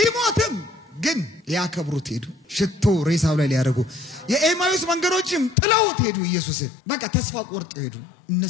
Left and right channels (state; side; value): drops out; right; at 5.6 s